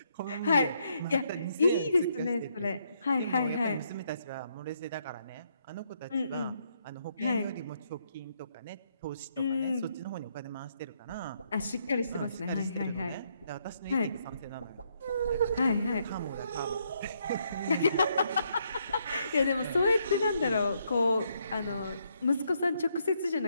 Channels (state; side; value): inverted; both; correlation -0.75